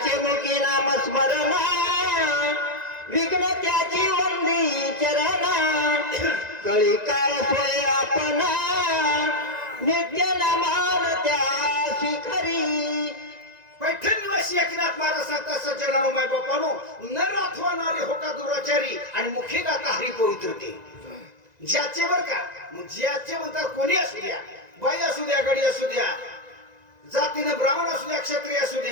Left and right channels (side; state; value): left; late; 1.9 ms